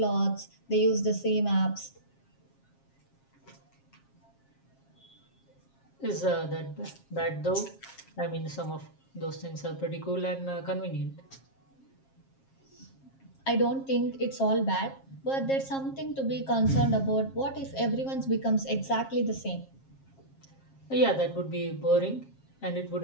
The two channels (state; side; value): late; right; 7.4 ms